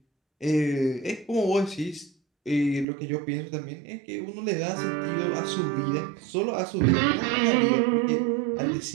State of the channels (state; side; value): drops out; left; at 2.9 s